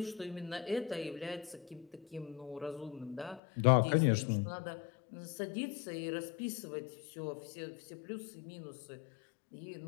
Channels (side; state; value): right; drops out; at 3.4 s